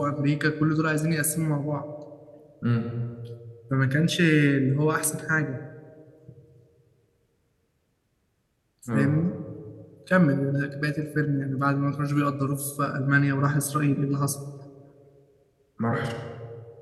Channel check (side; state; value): both; identical; correlation 1.00